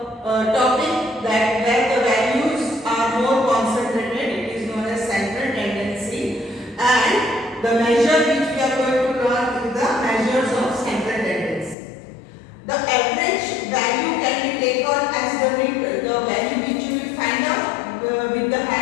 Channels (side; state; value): right; drops out; at 11.8 s